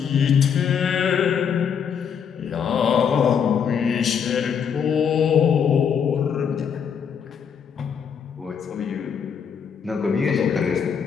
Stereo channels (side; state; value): right; quieter; 7.3 dB